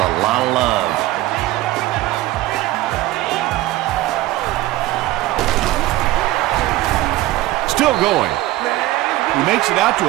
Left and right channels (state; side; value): quieter; left; 16.7 dB